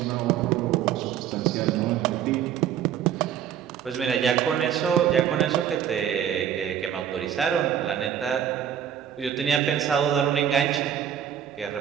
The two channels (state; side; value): quieter; left; 9.4 dB